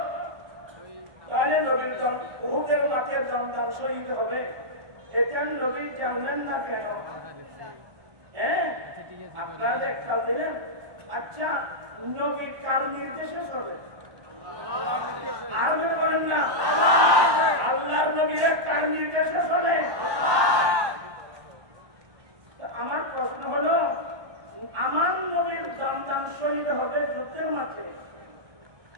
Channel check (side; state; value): left; late; 1.1 ms